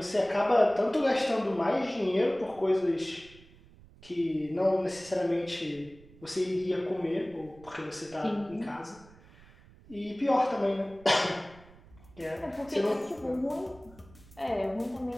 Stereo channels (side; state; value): right; noise; rumble, 24 dB below the sound